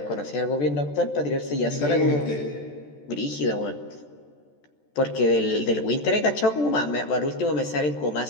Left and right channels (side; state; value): right; late; 14 ms